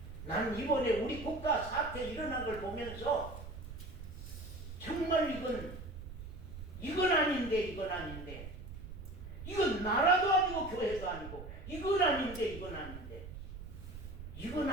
나는 이번에 우리 국가 사태 일어난 걸 보면서 정말 이건 아닌데 이건 나라도 아니고 교회도 아니고 이건 아닌데 이건 아니야.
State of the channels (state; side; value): noise; right; rumble, 11 dB below the sound